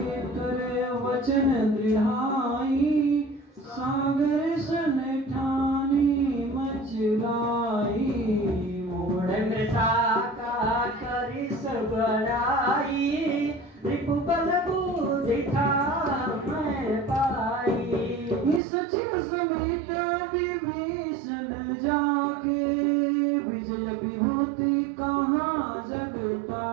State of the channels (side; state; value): left; drops out; at 18.6 s